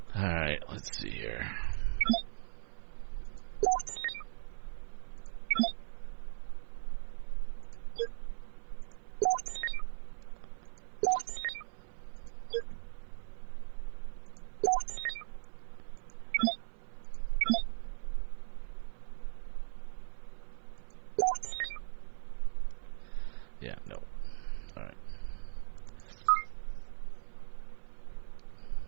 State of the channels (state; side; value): silent; left; 52 dB below the other